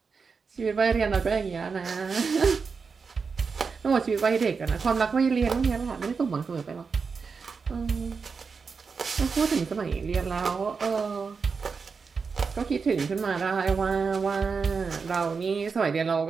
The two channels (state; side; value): quieter; left; 5.2 dB